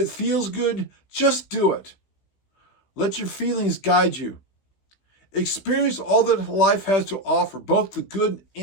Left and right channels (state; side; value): late; right; 16 ms